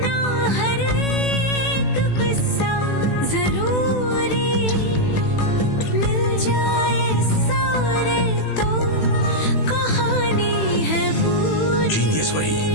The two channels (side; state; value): right; late; 18 ms